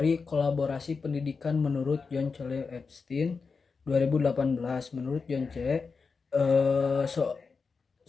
kolaborasi pendidikan menurut John C. Epstein 2018. Menurut John C.,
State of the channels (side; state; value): right; quieter; 4.9 dB